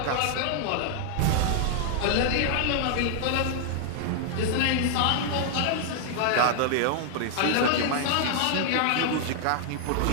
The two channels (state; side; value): different; both; correlation -0.01